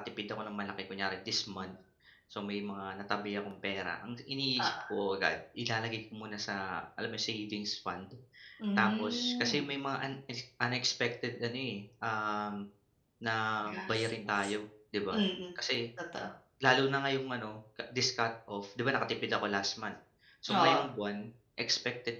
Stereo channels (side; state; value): both; identical; correlation 1.00